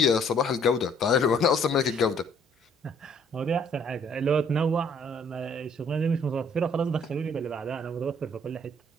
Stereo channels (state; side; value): normal; both; correlation 0.62